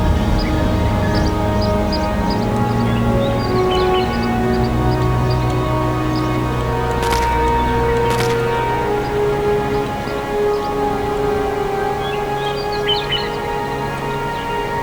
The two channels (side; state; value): both; identical; correlation 1.00